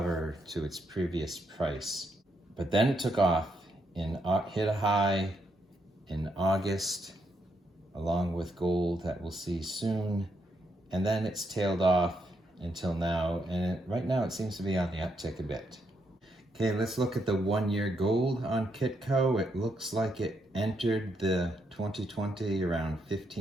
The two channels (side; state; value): both; normal; correlation 0.78